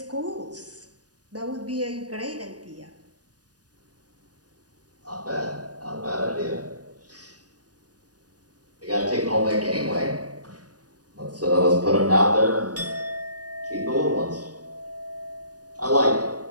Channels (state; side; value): late; left; 0.68 ms